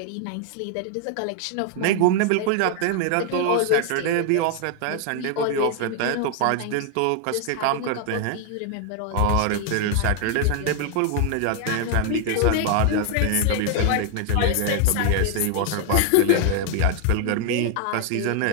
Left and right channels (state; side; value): different; both; correlation 0.00